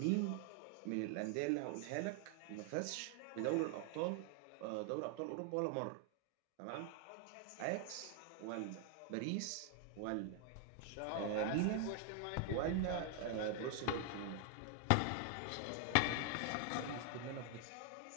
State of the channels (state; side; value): different; both; correlation 0.00